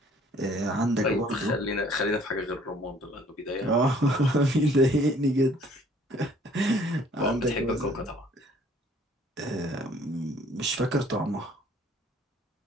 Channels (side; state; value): both; normal; correlation 0.57